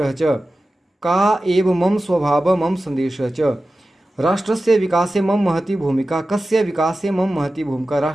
च। का एव मम स्वभाव मम संदेशः च। राष्ट्रस्य विकासे मम महती भूमिका। कस्य विकासे मम महती भूमिका।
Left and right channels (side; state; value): both; normal; correlation 0.94